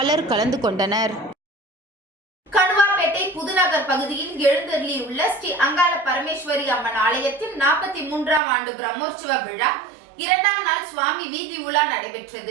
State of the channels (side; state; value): left; drops out; at 8.4 s